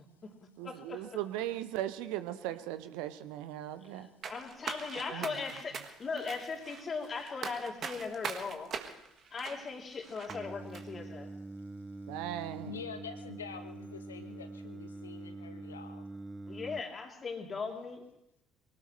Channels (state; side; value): normal; both; correlation 0.55